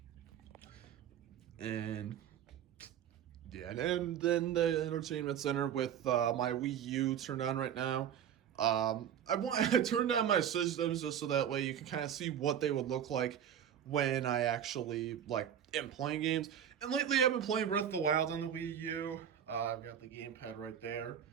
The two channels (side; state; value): left; quieter; 9.3 dB